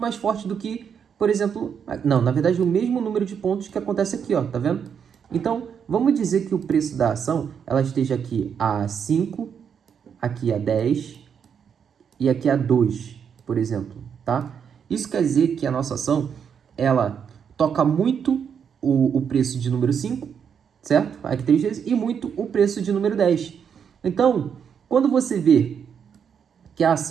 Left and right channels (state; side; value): quieter; left; 7.4 dB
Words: mais forte do que, por exemplo, não, na verdade, o mesmo número de pontos que acontece aqui, ó, tá vendo? Então, vamos dizer que o preço da ação, ela esteja aqui a 5, aqui a 10 e aqui a 2, por exemplo, tá? Isso quer dizer que a nossa ação, ela toca muito o preço de número 5, certo? Aqui 3 vezes, e muito o preço de número 10. Então, quando você vê que a